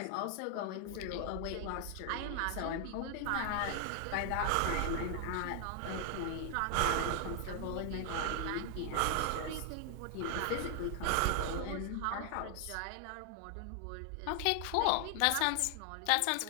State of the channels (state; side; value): different; both; correlation 0.00